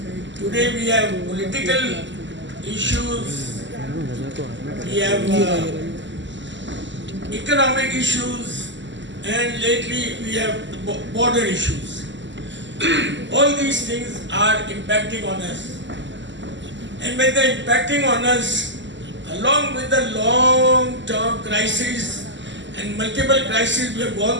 today we have political issues, we have economic issues, and lately we have border issues. All these things are impacting on us. And when they're impacting on us, along with the long-term crisis and multiple crises we have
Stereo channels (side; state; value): left; late; 0.54 ms